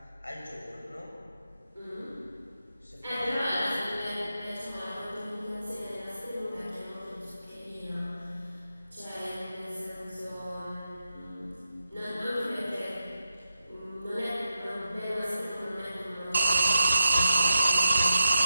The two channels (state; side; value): inverted; both; correlation -0.86